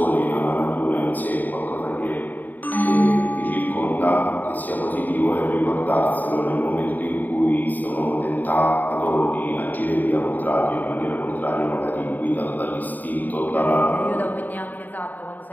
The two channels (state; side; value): late; right; 0.086 ms